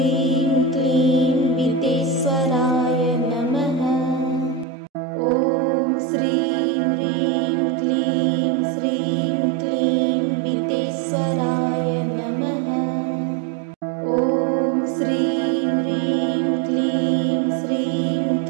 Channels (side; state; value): left; drops out; at 4.7 s